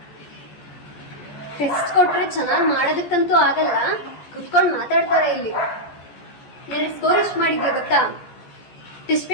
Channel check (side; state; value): right; late; 14 ms